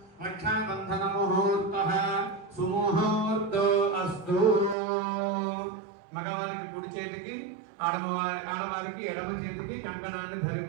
रक्षाबन्धनमुहूर्तः सुमुहूर्तो अस्तु మగవారికి కుడి చేతికి ఆడవారికి ఎడమ చేతికి కంకణాన్ని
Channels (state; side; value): drops out; left; at 4.8 s